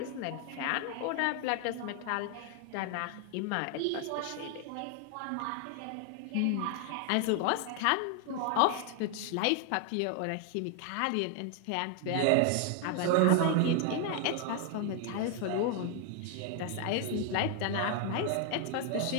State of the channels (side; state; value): both; different; correlation 0.00